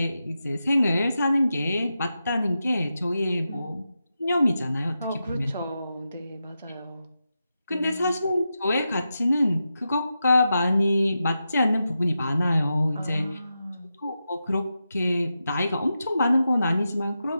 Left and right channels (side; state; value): both; inverted; correlation -0.89